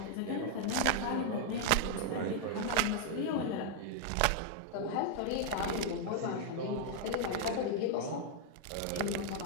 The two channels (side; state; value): both; different; correlation 0.00